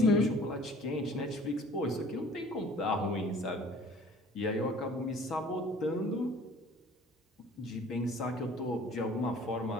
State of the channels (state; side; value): normal; both; correlation 0.50